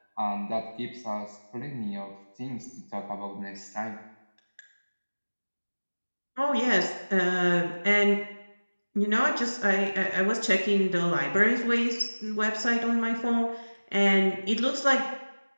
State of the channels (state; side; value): inverted; both; correlation -1.00